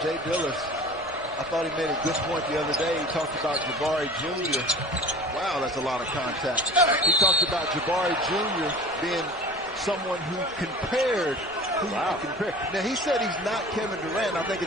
Jay Billis, I thought he made a good point the other day. He talked about Jabari Jr. Wow, that's a lot of contact. He talked about Jabari Jr. being someone who compared. Wow. Now, he said he's not Kevin Durant. I think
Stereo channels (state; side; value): noise; left; rumble, 25 dB below the sound